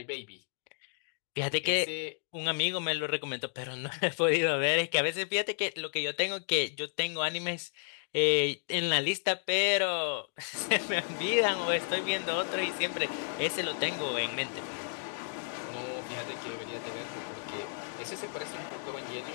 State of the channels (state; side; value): silent; right; digital silence